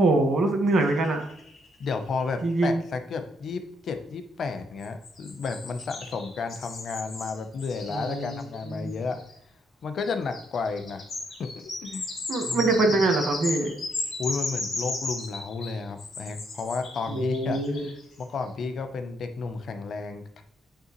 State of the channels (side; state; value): both; normal; correlation 0.73